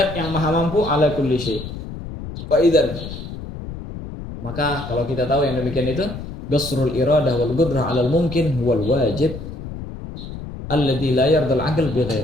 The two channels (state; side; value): noise; left; rumble, 10 dB below the sound